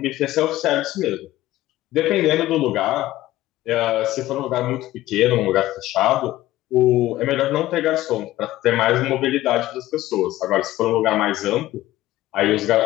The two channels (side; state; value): right; quieter; 15.7 dB